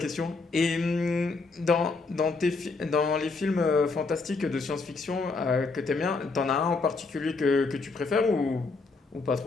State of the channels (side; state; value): right; quieter; 4.0 dB